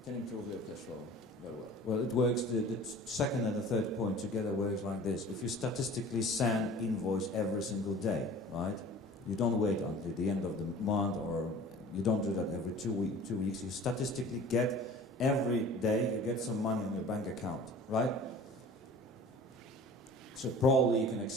can improve your cash flow very well. Well, it works, the second and the third point together works like this. If you statistically send invoice every single day, right? You don't wait until the end of the month, or you don't do that every 2 weeks. You statistically get every day, you get some money on your bank account, right? So probably you can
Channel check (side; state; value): both; normal; correlation 0.43